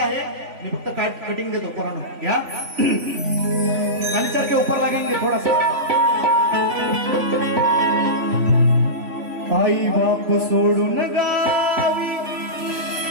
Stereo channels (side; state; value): left; late; 3.5 ms